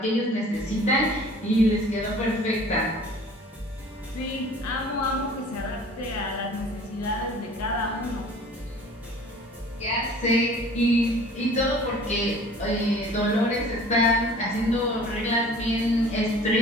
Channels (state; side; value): normal; both; correlation 0.48